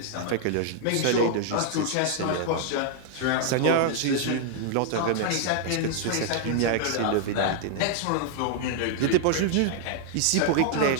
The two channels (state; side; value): different; both; correlation 0.00